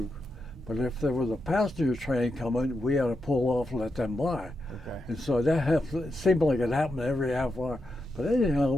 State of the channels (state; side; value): normal; both; correlation 0.86